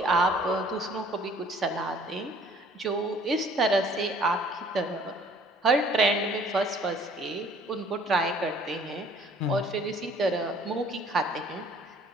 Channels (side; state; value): both; normal; correlation 0.56